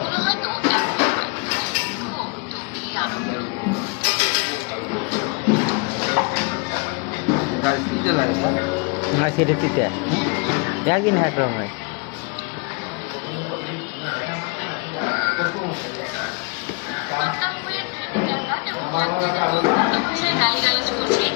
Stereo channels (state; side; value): quieter; right; 32.7 dB